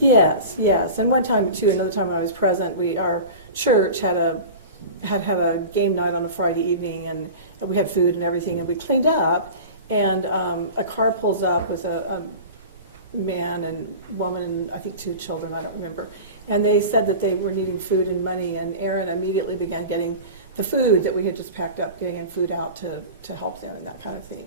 Yes. And one time, too, another time when I was present, our church had a game night on a Friday evening, and we had food and everything, and we cleaned up, and a car pulls up with a man and woman and I think 2 children, I don't remember, and they said that they were needing food and money, and Aaron immediately began getting the food that we had just packed up, getting food out to help them and that kind of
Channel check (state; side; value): inverted; both; correlation -0.34